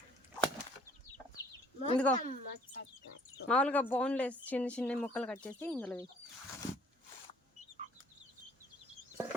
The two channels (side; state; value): both; normal; correlation 0.59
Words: ఇదిగో మామూలుగా బోన్లెస్ చిన్న చిన్న ముక్కలు కట్ చేసి ఇందులో వేయి.